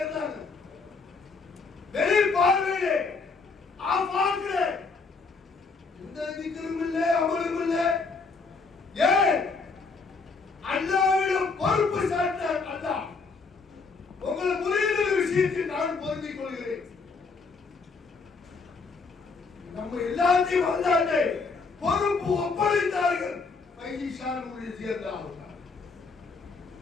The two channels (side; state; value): right; quieter; 4.4 dB